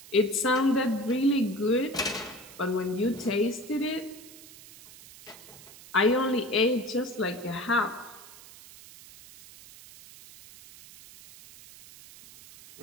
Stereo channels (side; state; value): right; noise; hiss, 19 dB below the sound